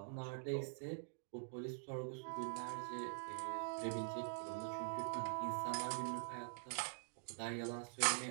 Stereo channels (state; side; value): silent; left; digital silence